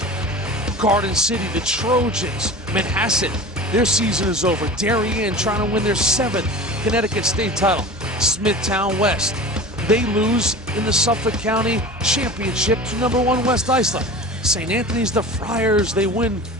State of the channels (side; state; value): both; normal; correlation 0.35